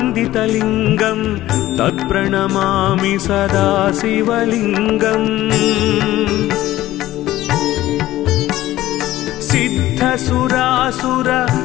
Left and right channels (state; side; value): quieter; right; 15.2 dB